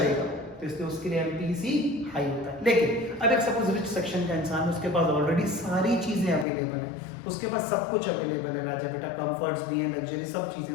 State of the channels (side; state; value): right; drops out; at 6.5 s